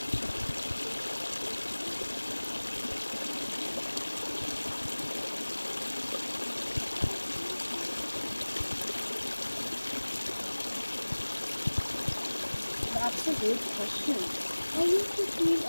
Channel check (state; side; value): inverted; both; correlation -1.00